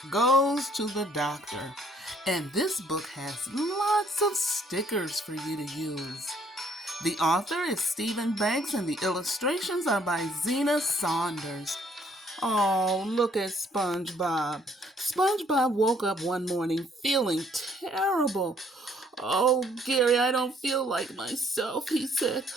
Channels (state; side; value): normal; both; correlation 0.64